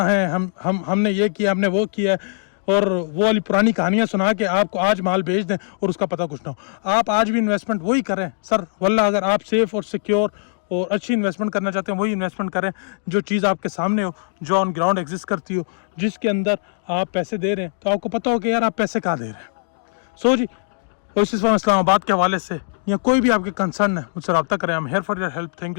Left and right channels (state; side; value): silent; right; digital silence